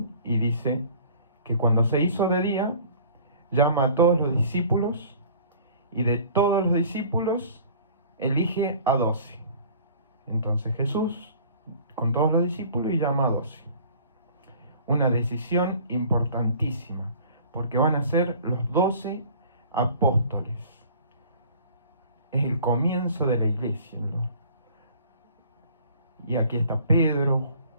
y dice que cuando se hizo de día, llama a todos los discípulos y de todos los discípulos elige a 12. Entonces Jesús con todos los discípulos y llama a 12. Una decisión importantísima, porque van a ser los 12 apóstoles. Es el comienzo de la iglesia, ¿no? Y aquí está Pedro,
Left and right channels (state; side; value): inverted; both; correlation -0.49